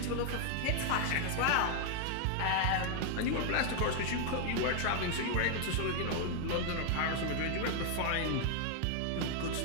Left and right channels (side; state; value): both; different; correlation 0.00